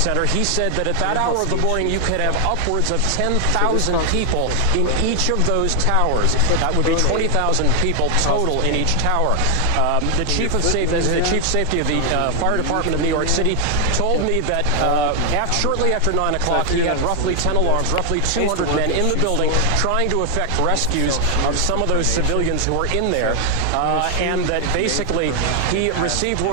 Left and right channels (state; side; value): different; both; correlation 0.00